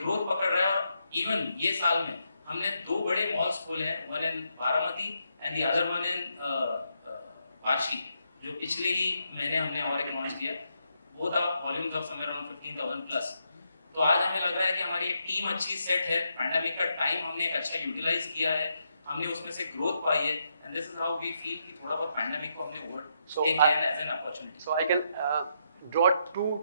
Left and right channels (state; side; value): inverted; both; correlation -0.80